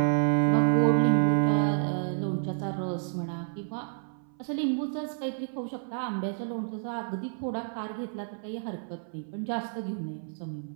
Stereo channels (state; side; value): silent; left; 56 dB below the other